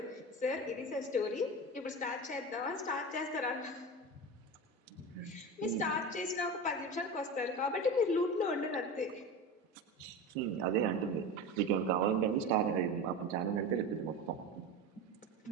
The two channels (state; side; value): normal; both; correlation 0.26